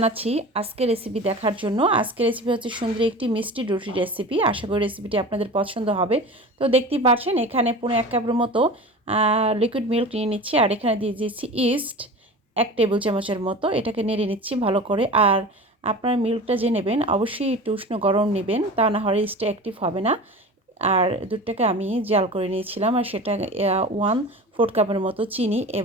আজকের রেসিপি দেখার জন্য। আজকের রেসিপি হচ্ছে সুন্দর একটি মিষ্টি রুটির রেসিপি। আশা করি রেসিপিটি আপনাদের পছন্দ হবে। তো দেখতেই পাচ্ছেন এখানে পৌনে 1 কাপের মতো লিকুইড মিল্ক নিয়ে নিচ্ছি, আর এখানে দিয়ে দিচ্ছি ইস্ট 1 টেবিল চামচের মতো। এটাকে নেড়ে নিচ্ছি ভালো করে। আর আপনার মিল্কটা যে নেবেন অবশ্যই একটু উষ্ণ গরম নেবেন, তা না হলে ইস্টটা অ্যাক্টিভ হবে না। আর দুধটাকে আমি জাল করে নিয়েছিলাম, আর সেটা 1/4 কাপের মতো চিনি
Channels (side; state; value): both; normal; correlation 0.35